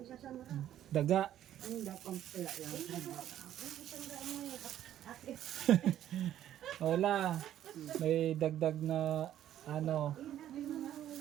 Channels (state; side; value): quieter; left; 11.6 dB